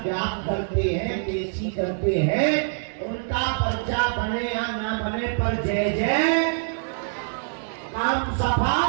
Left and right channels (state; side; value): silent; left; digital silence